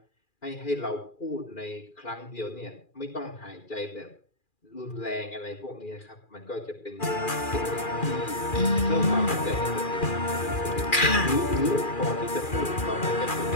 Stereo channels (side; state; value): right; late; 2.4 ms